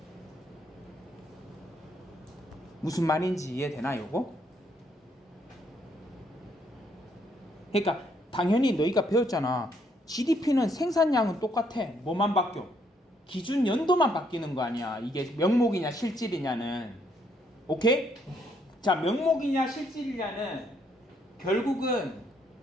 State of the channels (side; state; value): both; normal; correlation 0.71